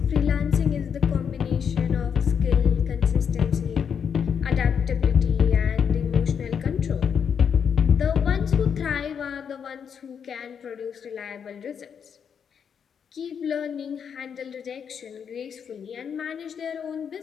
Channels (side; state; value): right; quieter; 7.3 dB